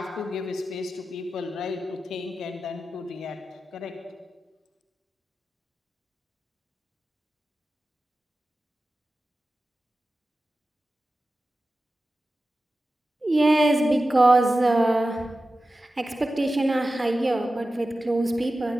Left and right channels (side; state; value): both; normal; correlation 0.94